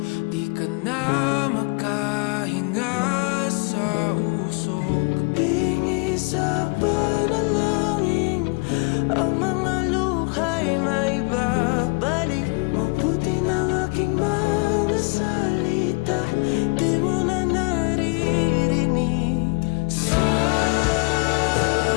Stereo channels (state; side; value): quieter; right; 31.0 dB